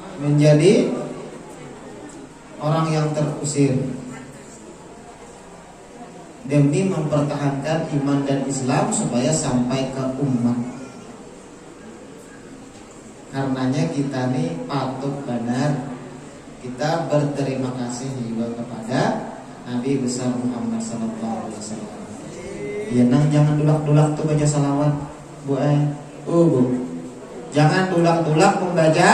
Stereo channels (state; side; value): identical; both; correlation 1.00